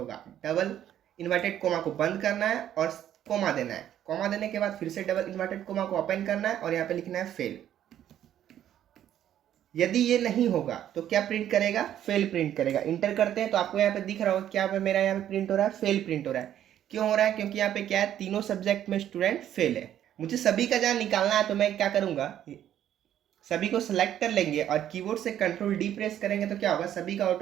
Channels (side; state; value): left; quieter; 11.0 dB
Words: डबल इन्वर्टेड कोमा को बंद करना है और कोमा देना है। कोमा देने के बाद फिर से डबल इन्वर्टेड कोमा को ओपन करना है और यहाँ पे लिखना है फेल। यदि ये नहीं होगा तो क्या प्रिंट करेगा, फेल प्रिंट करेगा। इंटर करते हैं तो आपको यहाँ पे दिख रहा होगा क्या पे मेरा यहाँ पे प्रिंट हो रहा है, फेल प्रिंट हो रहा है। क्यों हो रहा है, क्योंकि यहाँ पे क्या है, तीनों सब्जेक्ट में स्टूडेंट फेल है। मुझे सभी का जहाँ निकालना है तो मैं क्या करूँगा, सभी को सिलेक्ट कर लेंगे और कीबोर्ड से कंट्रोल डी प्रेस करेंगे तो क्या होगा, सभी का